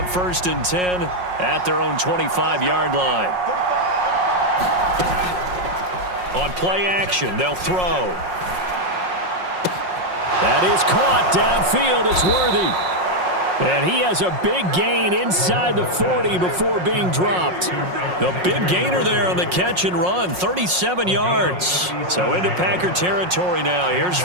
1st and 10 at their own 25-yard line. On play action, they'll throw. That is caught downfield. It's Worthy. And he has a big gain inside the 40 before being dropped. The big gainer there on the catch and run, 37 yards. So into Packer territory now. Here's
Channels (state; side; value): late; left; 5.5 ms